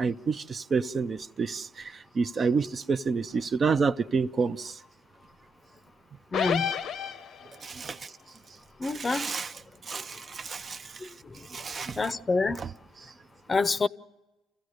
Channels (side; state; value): both; normal; correlation 0.82